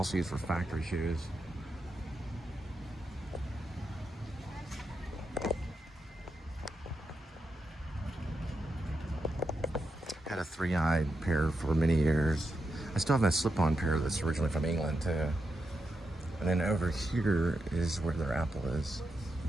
used for factory shoes. Had a 3-eyed pair for many years. I still have my slip-on pair that's originally from England too. And then over here is where their Apple is.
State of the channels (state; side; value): normal; both; correlation 0.86